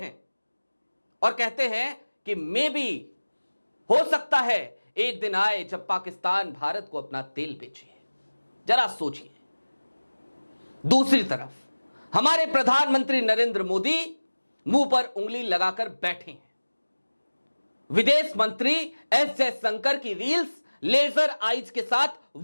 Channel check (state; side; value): inverted; both; correlation -1.00